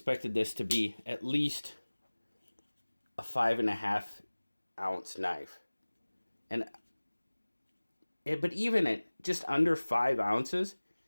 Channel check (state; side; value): inverted; both; correlation -1.00